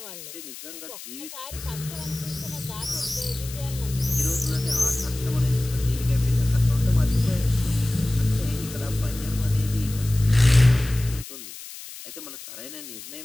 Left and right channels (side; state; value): left; noise; hiss, 13 dB below the sound